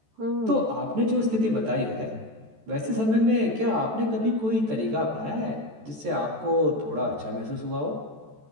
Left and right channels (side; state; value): left; late; 14 ms